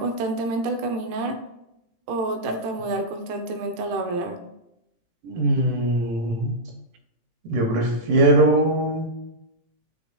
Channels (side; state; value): left; late; 18 ms